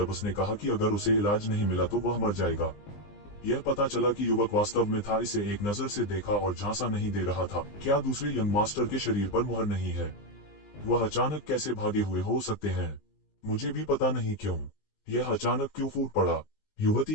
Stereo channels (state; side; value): late; right; 20 ms